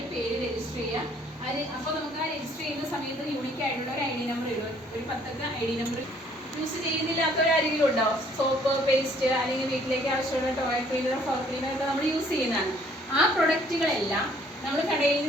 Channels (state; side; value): normal; both; correlation 0.61